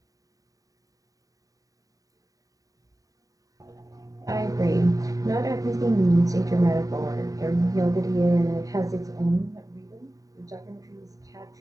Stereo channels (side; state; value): left; late; 0.17 ms